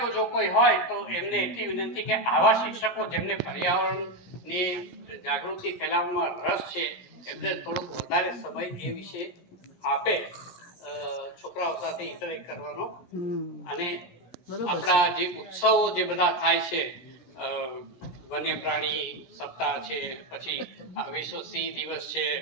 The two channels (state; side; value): late; right; 17 ms